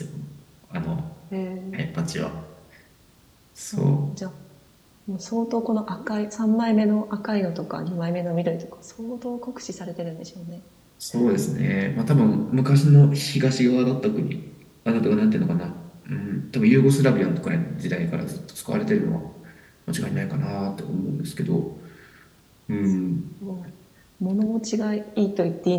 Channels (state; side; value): identical; both; correlation 1.00